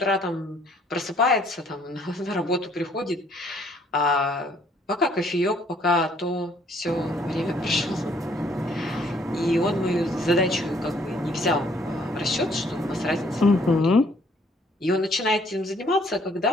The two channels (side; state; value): both; normal; correlation 0.63